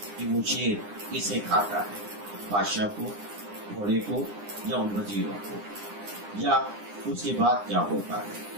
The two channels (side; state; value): left; late; 9.8 ms